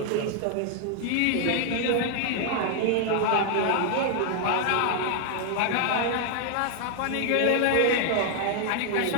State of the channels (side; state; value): both; different; correlation 0.00